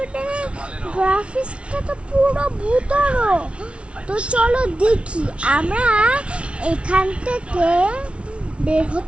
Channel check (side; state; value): left; late; 0.060 ms